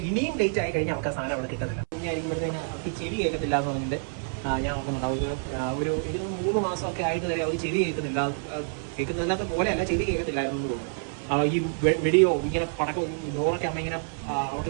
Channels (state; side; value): silent; left; 60 dB below the other